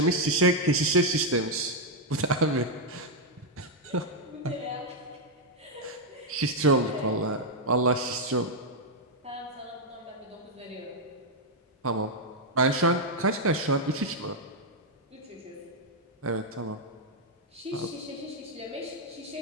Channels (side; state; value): both; normal; correlation -0.01